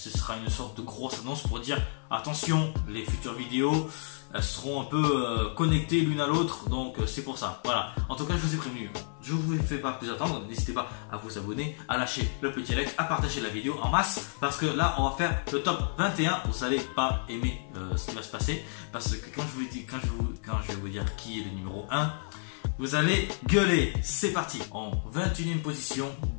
sera une sorte de grosse annonce pour dire attention, les futures vidéos elles seront un peu connectées l'une à l'autre, donc c'est pour ça. Voilà, en tout cas, je vous ai prévenu. Je ne vous fais pas plus attendre, n'hésitez pas à vous abonner, à lâcher le petit like, à partager la vidéo en masse, parce que là, on va faire le top 21. Vous n'allez pas aimer ce qui va se passer, parce que quand je vais vous dire qui est le numéro 1, vous allez gueuler. C'est parti. En 21e position,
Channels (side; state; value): right; silent; 58 dB below the other